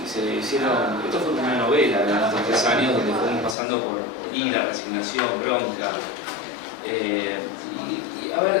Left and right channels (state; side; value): drops out; right; at 3.6 s